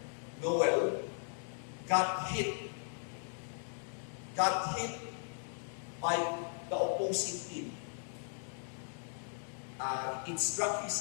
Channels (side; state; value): right; silent; digital silence